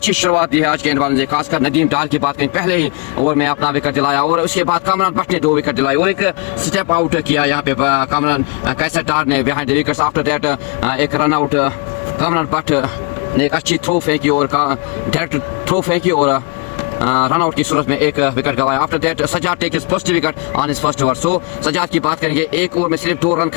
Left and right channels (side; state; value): right; quieter; 33.6 dB